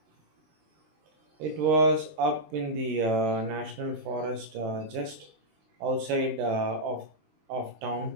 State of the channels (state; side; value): late; left; 20 ms